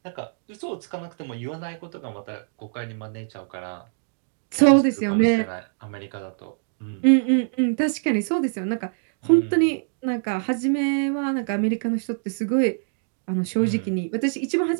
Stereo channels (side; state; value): left; silent; digital silence